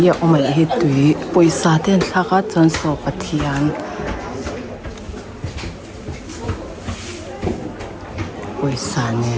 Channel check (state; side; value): identical; both; correlation 1.00